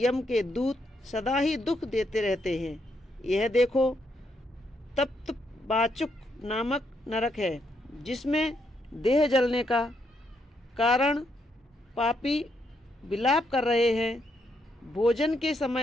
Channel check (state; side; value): normal; both; correlation 0.77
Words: के दूत सदा ही दुख देते रहते हैं। यह देखो, तप्त बाचुक नामक नरक है, जिसमें देह जलने का कारण पापी विलाप कर रहे हैं। भोजन के